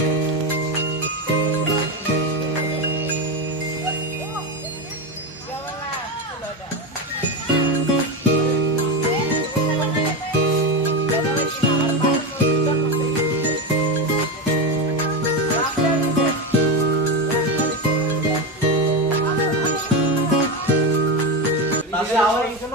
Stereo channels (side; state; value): both; normal; correlation 0.15